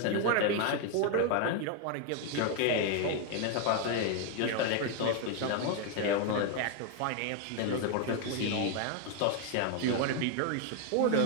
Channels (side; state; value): both; different; correlation 0.01